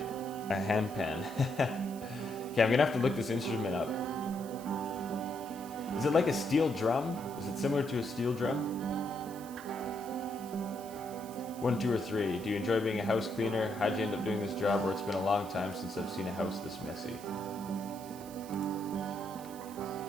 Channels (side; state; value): right; noise; hiss, 18 dB below the sound